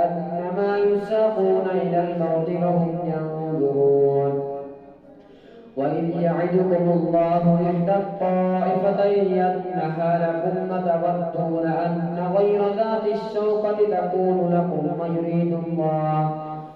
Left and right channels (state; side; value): identical; both; correlation 1.00